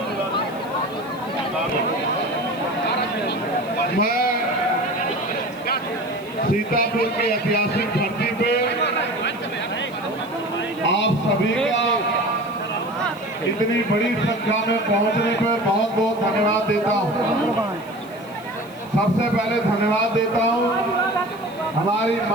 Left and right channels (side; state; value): left; noise; hiss, 24 dB below the sound